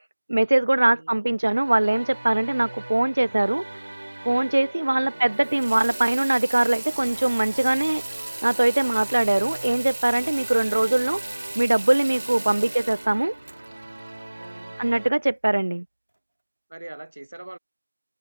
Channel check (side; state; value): both; inverted; correlation -1.00